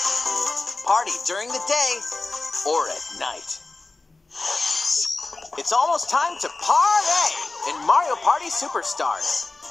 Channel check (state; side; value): quieter; right; 3.4 dB